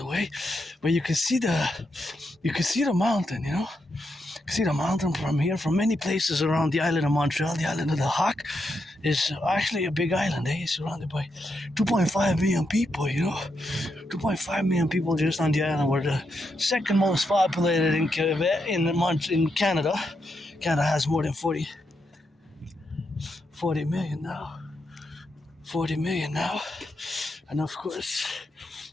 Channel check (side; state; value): both; normal; correlation 0.83